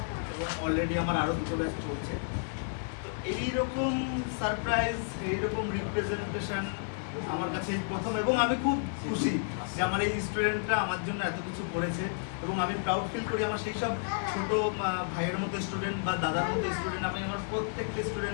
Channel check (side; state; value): right; silent; digital silence